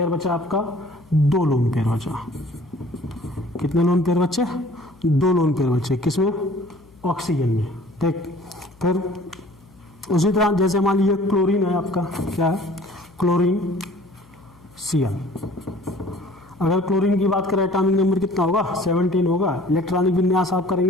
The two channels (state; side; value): noise; left; hum, 27 dB below the sound